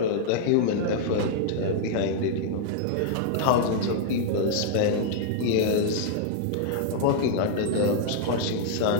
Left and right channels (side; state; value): both; different; correlation -0.01